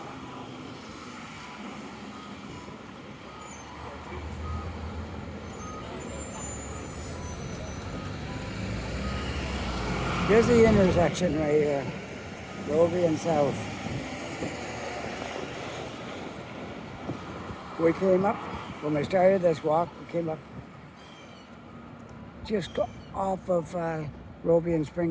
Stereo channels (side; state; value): both; identical; correlation 1.00